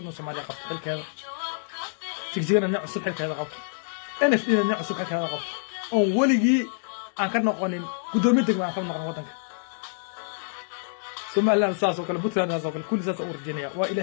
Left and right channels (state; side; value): silent; right; digital silence